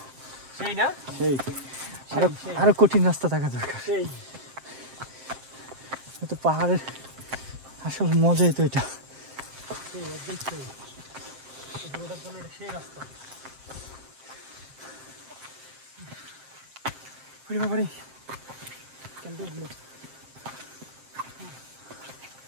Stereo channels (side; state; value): left; late; 7.5 ms